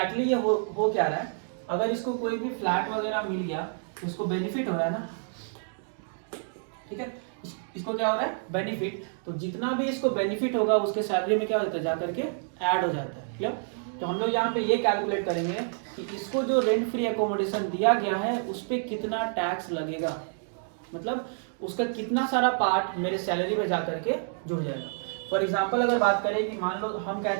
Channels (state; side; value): silent; left; digital silence